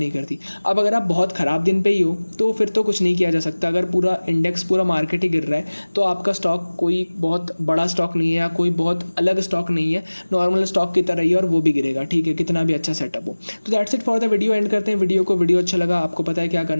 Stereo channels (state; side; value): inverted; both; correlation -1.00